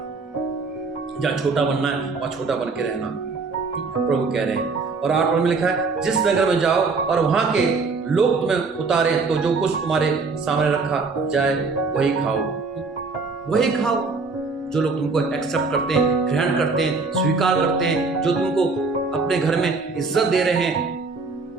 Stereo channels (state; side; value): quieter; left; 4.2 dB